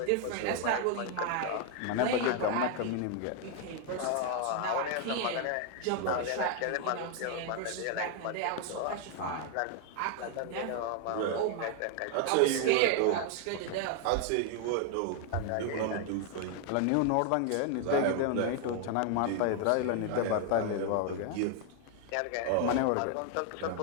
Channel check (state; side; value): different; both; correlation 0.00